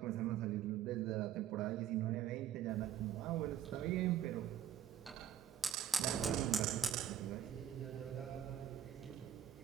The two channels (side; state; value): left; quieter; 9.9 dB